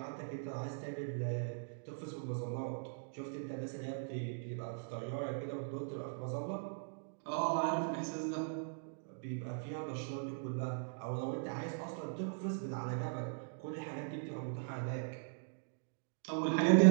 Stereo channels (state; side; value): silent; left; digital silence